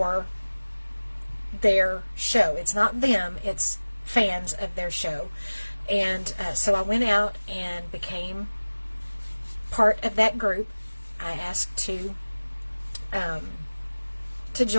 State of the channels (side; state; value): both; inverted; correlation -1.00